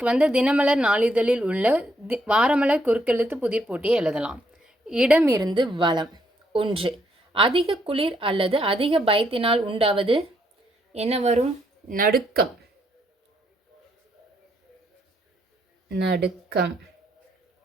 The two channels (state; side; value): normal; both; correlation 0.74